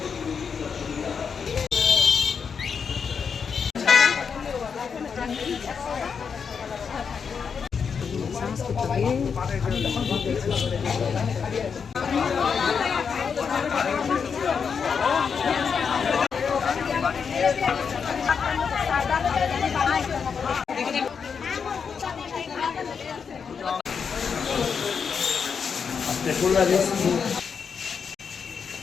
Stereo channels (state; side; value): quieter; right; 6.2 dB